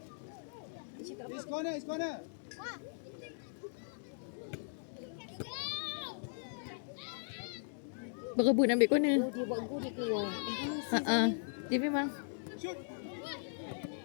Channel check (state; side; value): silent; right; digital silence